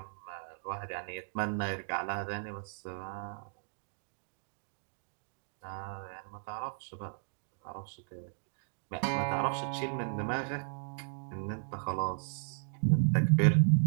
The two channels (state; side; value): silent; left; digital silence